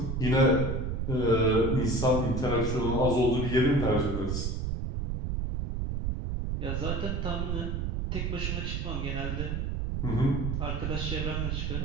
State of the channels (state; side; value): noise; right; rumble, 1 dB below the sound